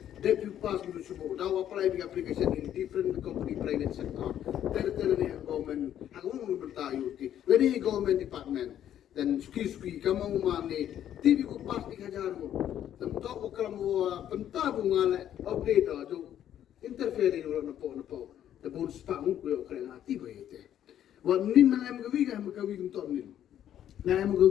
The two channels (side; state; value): right; quieter; 10.7 dB